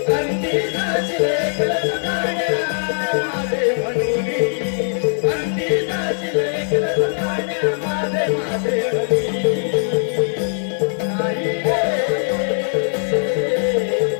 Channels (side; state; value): right; silent; 66 dB below the other